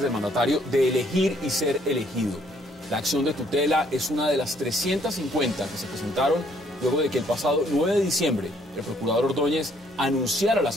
del mandatario de elegir y ser elegido. La acción de tutela es una de las 350 que se presentaron luego de que el pasado 9 de diciembre el procurador Ordóñez anunciara la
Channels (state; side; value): normal; both; correlation 0.66